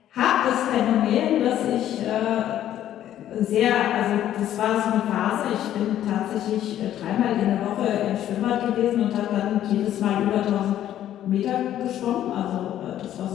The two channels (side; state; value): right; quieter; 11.7 dB